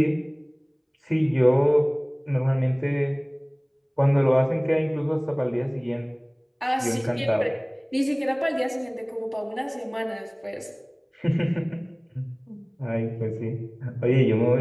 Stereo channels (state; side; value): identical; both; correlation 1.00